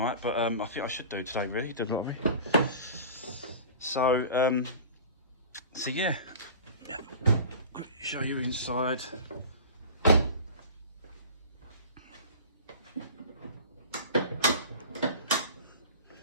but I think I should do today, really, do the lottery. So yeah, show you inside.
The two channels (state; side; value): inverted; both; correlation -0.38